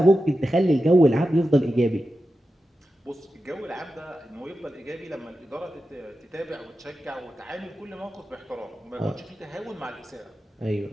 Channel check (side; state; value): both; normal; correlation 0.91